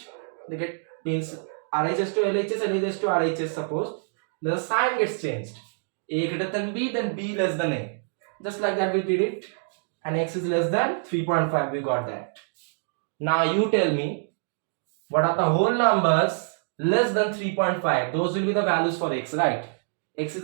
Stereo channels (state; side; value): silent; left; digital silence